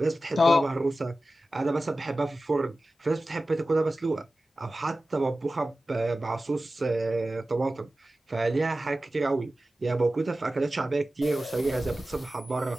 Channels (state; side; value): normal; both; correlation 0.95